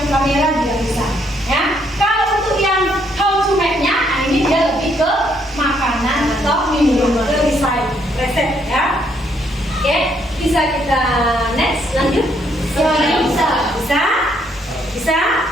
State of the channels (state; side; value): normal; both; correlation 0.71